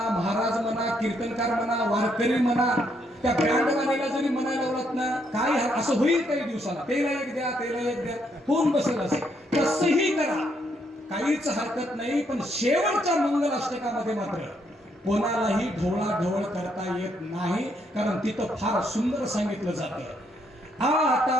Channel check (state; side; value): normal; both; correlation 0.74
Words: महाराज म्हणा, कीर्तनकार म्हणा, वारकरी म्हणा, त्या बँडवाल्याला जरी म्हणायला लावलात ना, काय असं होईल काही दिवसाला, तेला एक द्या, तेला एक द्या, होऊन बसेल असे. तसंही करा, काहीच हरकत नाही. पण शेवटच्या मंगलाष्टकामध्ये मात्र कोणालाही ढवळाढवळ करता येत नाही, कारण तिथं फार सुंदर सांगितलं जातं.